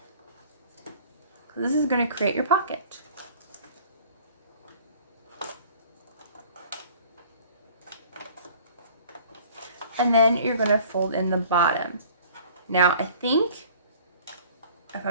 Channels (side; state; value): both; inverted; correlation -0.50